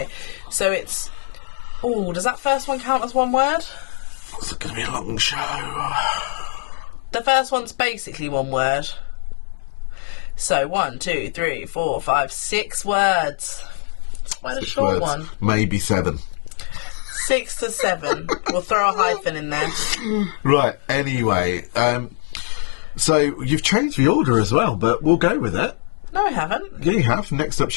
so it's... Oh, does that first one count as one word? It's going to be a long show. The first one's basically one word. So 1, 2, 3, 4, 5, 6 words. It's quite a short one. Maybe 7. 6 to 7. We'll throw a hyphen in there. Right, anyway. So you've changed the order as well, but we'll go with it. No, I haven't. Yeah, you have. Next up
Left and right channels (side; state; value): right; silent; 61 dB below the other